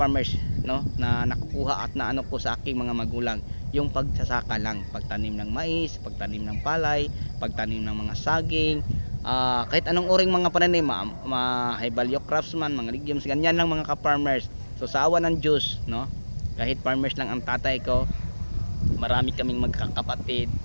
no, na nakukuha at naano ko sa aking mga magulang, yung pagsasaka lang, pagtanim ng mais, pagtanim ng palay, pagtanim ng mga saging, kahit anong uring mga pananim, high value crops man, mga legumes, ganyan lang mga ka-farmers. So sa awa ng Diyos, no, kahit farmers lang ang tatay ko, marami kaming magkakapatid.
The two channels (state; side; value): inverted; both; correlation -1.00